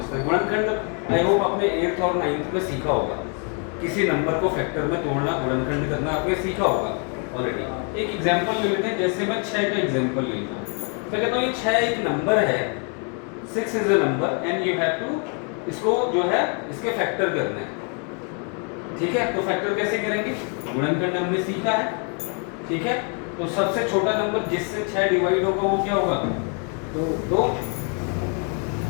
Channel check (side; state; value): right; quieter; 39.3 dB